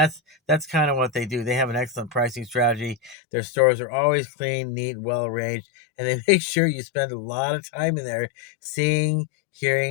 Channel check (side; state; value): right; drops out; at 3.2 s